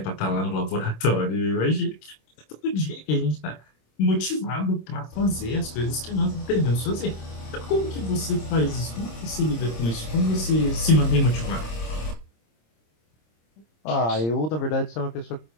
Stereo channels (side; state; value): right; late; 26 ms